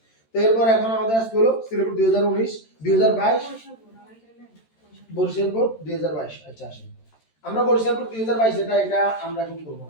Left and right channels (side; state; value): right; late; 13 ms